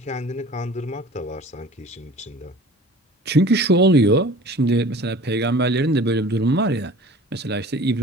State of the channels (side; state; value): both; normal; correlation 0.44